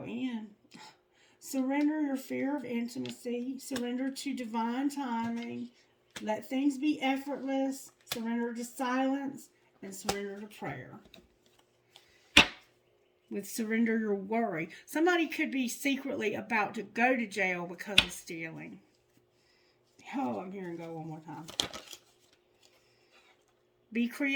in. Surrender your fear of intimacy. Surrender to divine timing. Let things be effortless. Surrender to silence. And surrender to prayer. With surrender your worry. Somebody could be secretly about to go to jail because of stealing. Oh, I'm hearing go one more time. Be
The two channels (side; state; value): both; identical; correlation 1.00